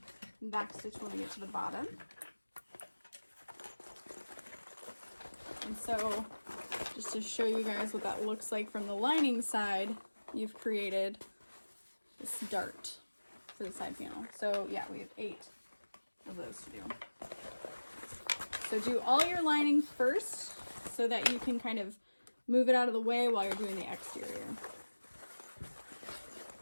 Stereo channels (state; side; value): inverted; both; correlation -1.00